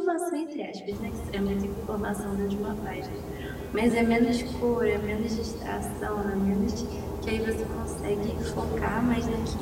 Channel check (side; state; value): both; identical; correlation 1.00